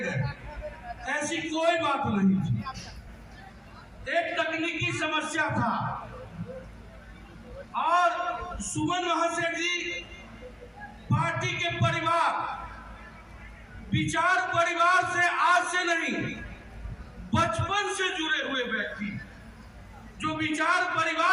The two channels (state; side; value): identical; both; correlation 1.00